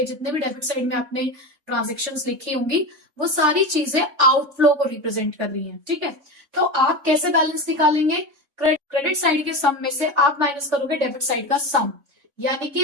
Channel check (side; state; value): left; late; 3.6 ms